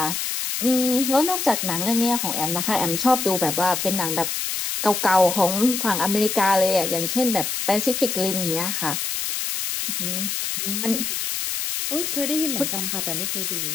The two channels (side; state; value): left; noise; hiss, 2 dB below the sound